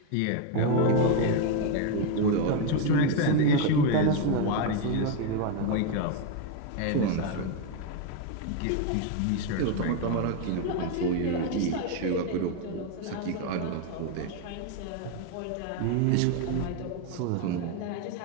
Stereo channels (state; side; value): different; both; correlation 0.02